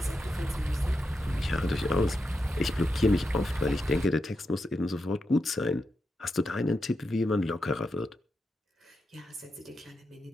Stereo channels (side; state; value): both; normal; correlation 0.87